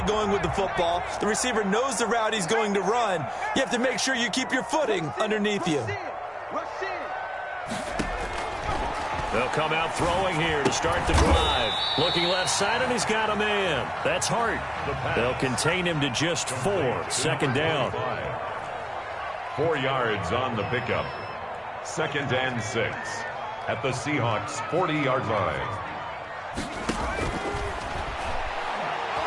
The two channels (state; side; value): identical; both; correlation 1.00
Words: going with the football. The receiver knows the route he's going to run. You have to make sure you keep your footing underneath you. They'll come out throwing here to start the drive. Looking left side, and he's got a man. That's Hart. They'll contain him to just 4. 2nd down. 4 yards on the pickup. 2nd and 6 at the Seahawks 40-yard line.